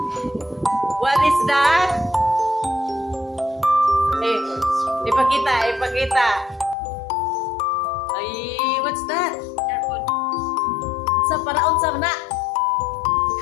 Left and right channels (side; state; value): right; drops out; at 6.8 s